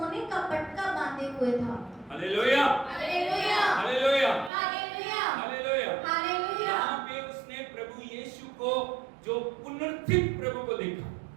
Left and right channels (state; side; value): drops out; left; at 4.5 s